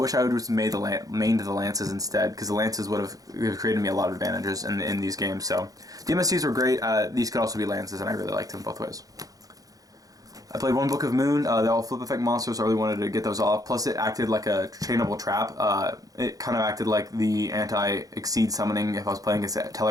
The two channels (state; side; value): late; left; 0.17 ms